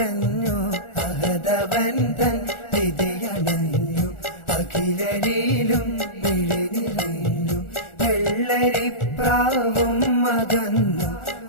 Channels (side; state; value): right; late; 1.4 ms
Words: അഹദവൻ തൻ വിധിയണഞ്ഞു അഖിലരിലും മിഴി നിറഞ്ഞു വെള്ളരിപ്രാവും അകന്നു